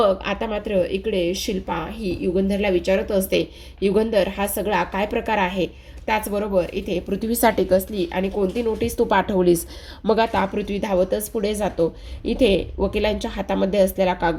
आता मात्र इकडे शिल्पा ही युगंधरला विचारत असते, युगंधर, हा सगळा काय प्रकार आहे? त्याचबरोबर इथे पृथ्वीसाठी कसली आणि कोणती नोटीस तू पाठवलीस? मग आता पृथ्वी धावतच पुढे जातो. इथे वकिलांच्या हातामध्ये असलेला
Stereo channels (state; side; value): identical; both; correlation 1.00